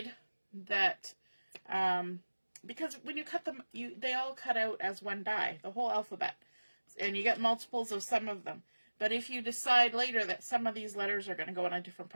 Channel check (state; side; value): inverted; both; correlation -1.00